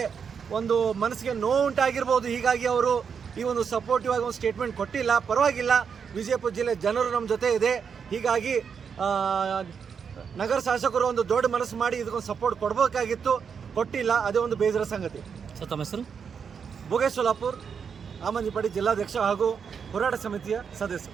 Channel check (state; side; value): quieter; left; 6.6 dB